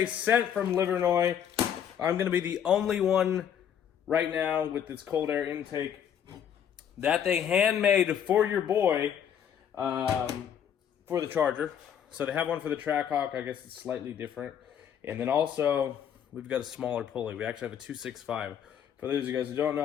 sent from Livernois. I'm going to be the only one right now with this cold air intake that they handmade for your boy for the Charger. So they have one for the Trackhawk. I guess it's slightly different. And then also, we've got a smaller pulley. We actually have a 265. For those of you guys who don't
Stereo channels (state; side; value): quieter; right; 8.9 dB